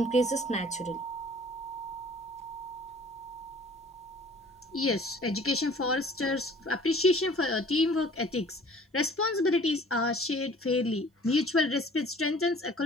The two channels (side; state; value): both; normal; correlation 0.51